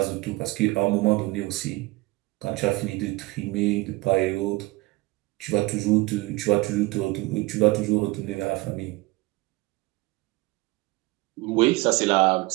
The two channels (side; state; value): left; quieter; 21.8 dB